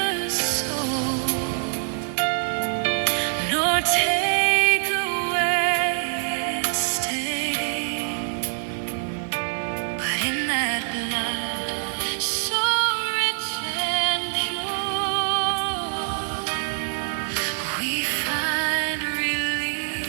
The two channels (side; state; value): left; silent; digital silence